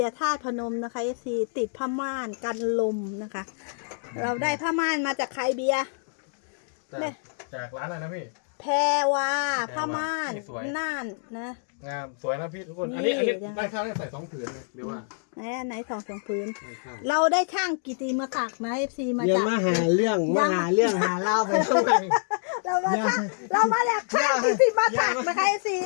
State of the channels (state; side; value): silent; right; digital silence